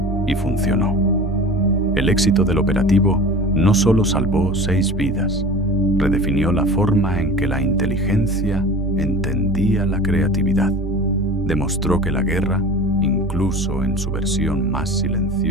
Y funcionó. El éxito del operativo no solo salvó 6 vidas, redefinió la forma en que la inteligencia entendía la creatividad. Demostró que la guerra, incluso en su versión más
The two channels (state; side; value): normal; both; correlation 0.37